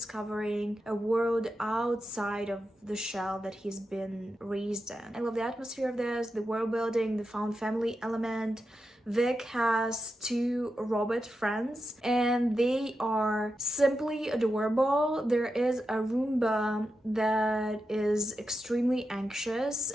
a world outside of the shell that he's been raised in. I love the atmosphere of this, the world building, the found family element. Vic has 2 robot friends and they are simply adorable. There is a Roomba that is extremely anxious,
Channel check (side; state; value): both; normal; correlation 0.88